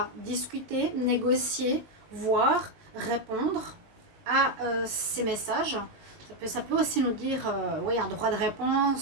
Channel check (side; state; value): left; late; 19 ms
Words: discuter, négocier, voir, répondre à ces messages. Ça peut aussi nous dire oui, un droit de